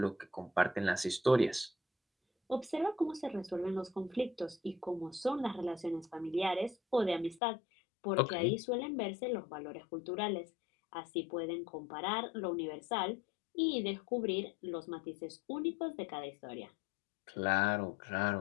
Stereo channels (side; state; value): right; drops out; at 7.4 s